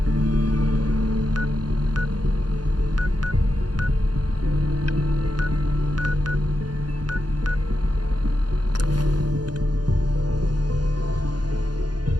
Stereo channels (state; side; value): late; left; 0.70 ms